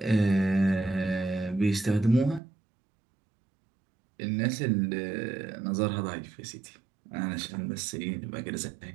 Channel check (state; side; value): drops out; left; at 2.4 s